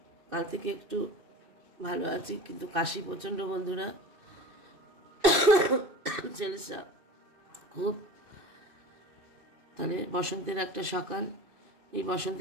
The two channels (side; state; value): left; late; 2.6 ms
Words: কাল থেকে একটু ভালো আছি, কিন্তু কাশি প্রচণ্ড বন্ধুরা। ছেলেসা খুব। তাহলে বসন্তের একটা সকাল, এই